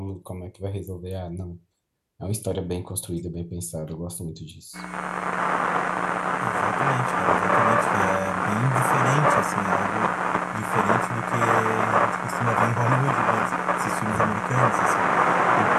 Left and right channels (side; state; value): both; identical; correlation 1.00